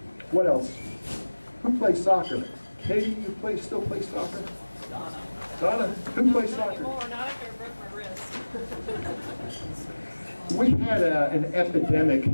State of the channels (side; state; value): both; inverted; correlation -1.00